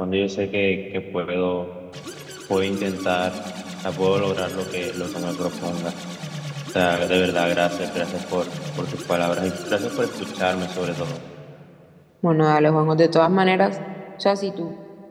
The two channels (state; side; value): identical; both; correlation 1.00